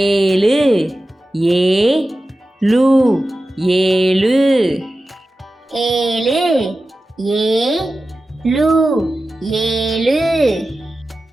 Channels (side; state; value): both; normal; correlation 0.94